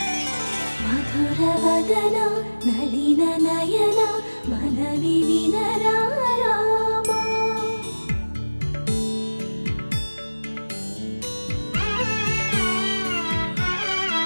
మధుర వదన నళిన నయన మనవి వినరా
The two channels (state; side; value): inverted; both; correlation -1.00